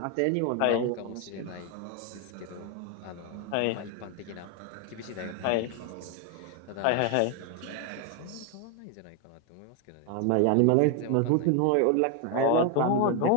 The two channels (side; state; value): both; different; correlation 0.01